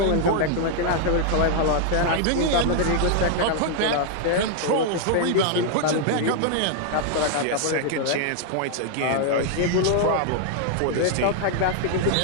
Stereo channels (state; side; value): different; both; correlation 0.00